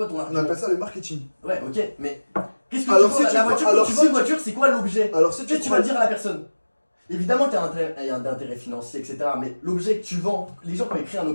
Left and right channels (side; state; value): both; inverted; correlation -1.00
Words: ton On argument? appelle ça le marketing. Ouais, ok, mais qu'est-ce que Alors, tu si vends tu la crois- voiture? alors, Quand tu si vends une tu- voiture, c'est quoi l'objet? Alors si Qu'est-ce que tu vas dire à la personne? Évidemment qu'il y a un intérêt financier, etc. Mais l'objet que tu vends, les gens quand ils créent un